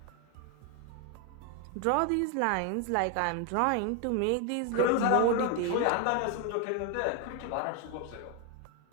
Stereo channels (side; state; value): both; different; correlation 0.01